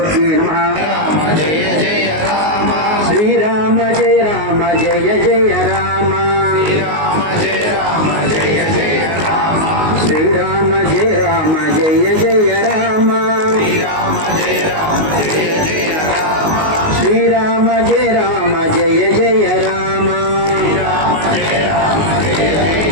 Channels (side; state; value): left; late; 19 ms